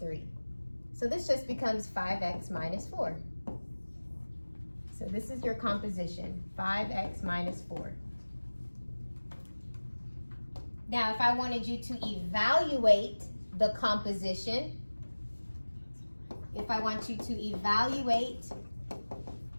So this just becomes 5x minus 4. So this is your composition, 5x minus 4. Now, if I wanted you to evaluate the composition,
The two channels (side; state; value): both; inverted; correlation -1.00